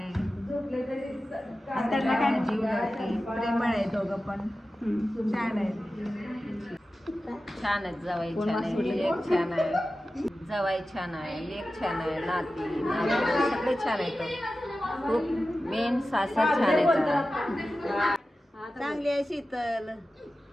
त्यांना काय जीव लावते, प्रेमळ आहे. दोघं पण छान आहे. छान आहेत. जावाई छान आहे, लेक छान आहे. जावाई छान आहे, लेक छान आहे, नाती सगळे छान आहेत. खूप मेन सासर छान आहेत. चांगली आहे शीतल.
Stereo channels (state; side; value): normal; both; correlation 0.94